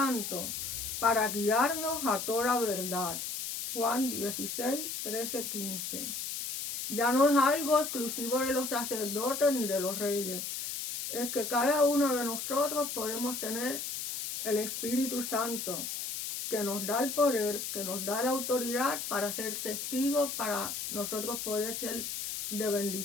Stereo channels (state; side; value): noise; left; hiss, 5 dB below the sound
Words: para guiarnos a toda verdad. Juan 16, 13, 15. Ya no es algo exclusivo de los sacerdotes ni de los reyes. es que cada uno de nosotros podemos tener el Espíritu Santo, que nos da el poder, que nos da la autoridad para ser testigos, para nosotros poder ser de